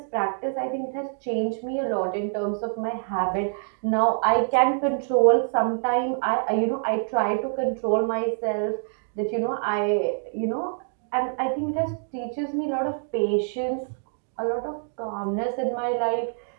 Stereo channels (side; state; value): left; silent; 61 dB below the other